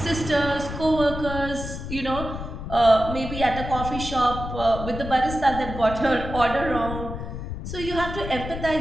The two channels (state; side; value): noise; left; rumble, 7 dB below the sound